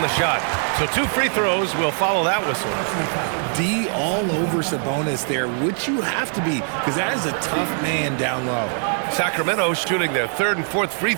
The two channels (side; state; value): left; silent; 56 dB below the other